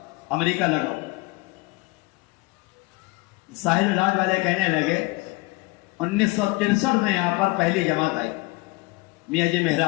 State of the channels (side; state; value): right; quieter; 23.8 dB